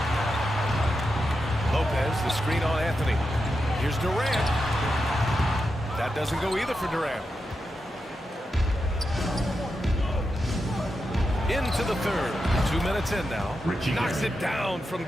Lopez, the screen on Anthony. Here's Durant. That doesn't go either for Durant. Into the third. 2 minutes in now. Knocks it down from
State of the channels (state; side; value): normal; both; correlation 0.88